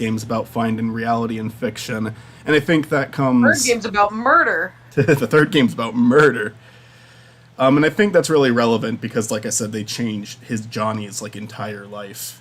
is about finding reality and fiction. And I think that comes. Third game's about murder. The third game's about murder. And I think that's really relevant because, like I said, they changed Johnny's like entire life,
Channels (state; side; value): identical; both; correlation 1.00